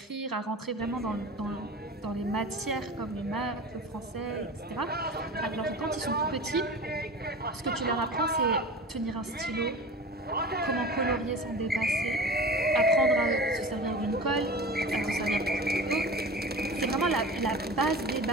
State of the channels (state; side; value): normal; both; correlation 0.35